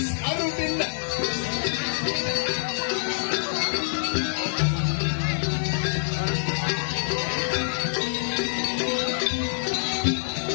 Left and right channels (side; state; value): right; silent; digital silence